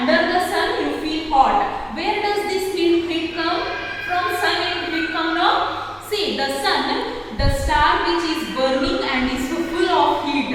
the sun, you feel hot. Where does this heat come? From sun it come now. See, the sun, the star which is burning and is full of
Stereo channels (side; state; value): both; identical; correlation 1.00